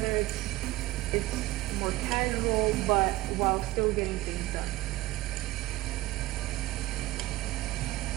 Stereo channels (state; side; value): quieter; left; 17.9 dB